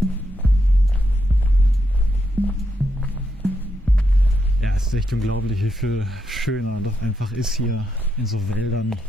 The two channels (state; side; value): normal; both; correlation 0.81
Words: Es ist echt unglaublich, wie viel schöner doch einfach ist hier in so Wäldern.